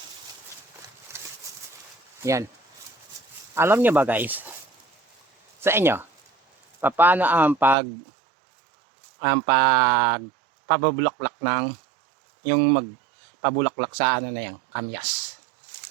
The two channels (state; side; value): drops out; left; at 7.8 s